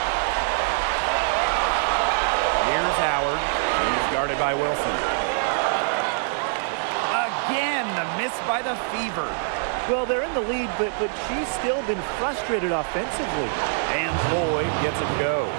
Here's Howard. He's guarded by Wilson. Again, the miss by the Fever. Well, they're in the lead, but she's still been frustrated offensively. And Lloyd gets it to go.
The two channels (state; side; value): silent; left; 62 dB below the other